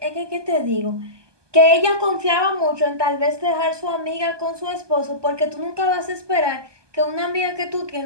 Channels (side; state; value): left; late; 1.2 ms